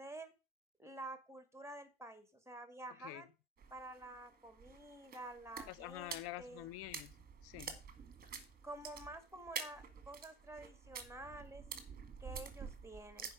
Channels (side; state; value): both; normal; correlation 0.31